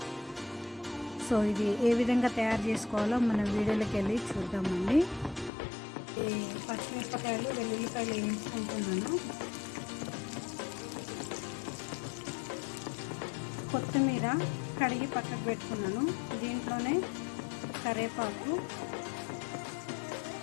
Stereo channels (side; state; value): right; drops out; at 5.5 s